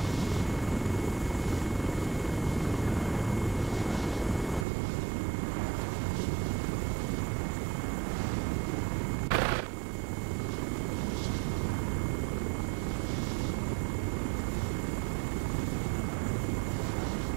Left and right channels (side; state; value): left; drops out; at 4.7 s